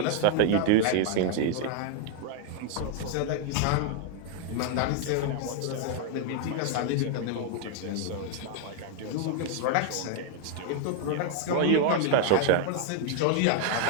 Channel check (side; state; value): both; different; correlation 0.00